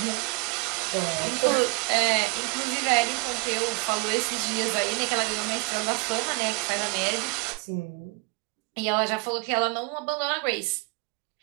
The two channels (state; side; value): quieter; left; 29.0 dB